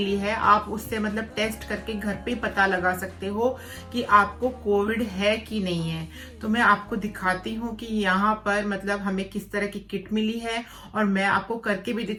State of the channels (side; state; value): both; identical; correlation 1.00